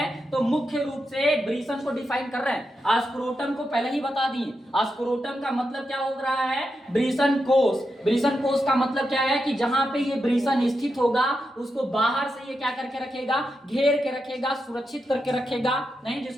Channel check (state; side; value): normal; both; correlation 0.87